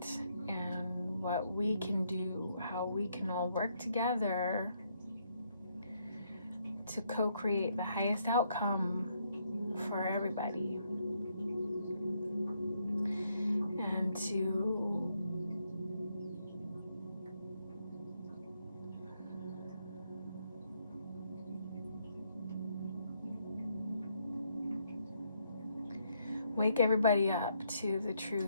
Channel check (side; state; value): both; inverted; correlation -0.74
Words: and what we can do, how we can all work together to co-create the highest outcome for everybody. And to wake everybody up to the